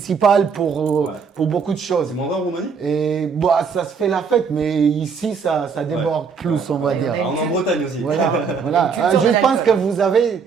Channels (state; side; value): quieter; left; 5.8 dB